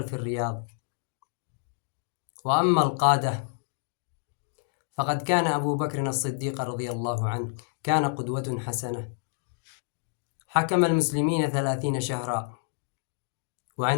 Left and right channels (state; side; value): silent; right; digital silence